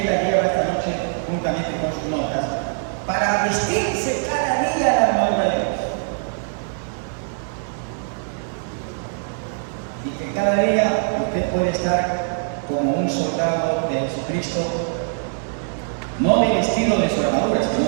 la lleva esta noche juntamente con sus notas para vestirse cada día la armadura de Dios. Y que cada día usted puede estar como un soldado de Jesucristo, no del estilo de su armadura,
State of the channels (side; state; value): left; silent; 55 dB below the other